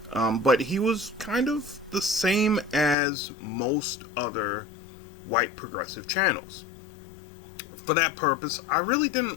But he was kind of the same as most other white progressive channels. For that purpose, I really didn't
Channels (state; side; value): drops out; right; at 3.0 s